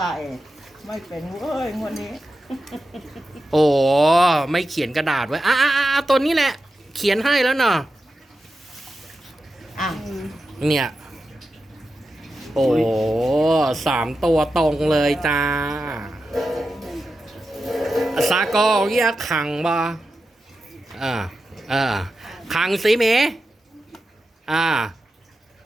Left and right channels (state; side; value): normal; both; correlation 0.91